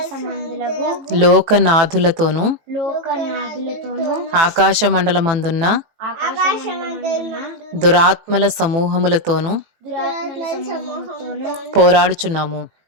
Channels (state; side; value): late; left; 18 ms